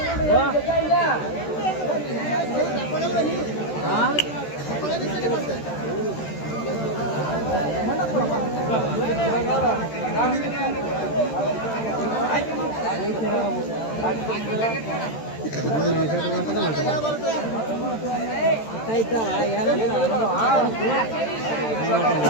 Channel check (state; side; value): late; right; 13 ms